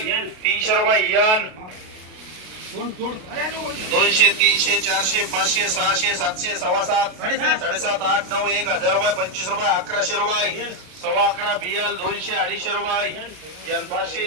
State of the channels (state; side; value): late; left; 32 ms